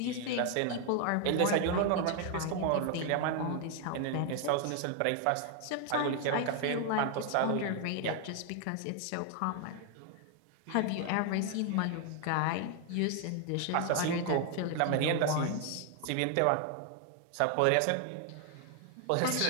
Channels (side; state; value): both; different; correlation 0.00